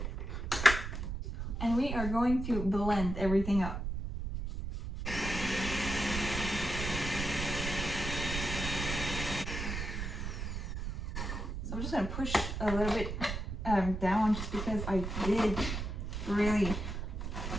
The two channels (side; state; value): right; noise; rumble, 4 dB below the sound